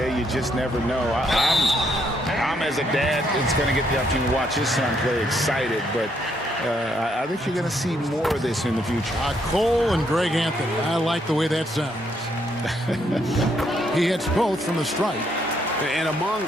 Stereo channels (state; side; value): normal; both; correlation 0.73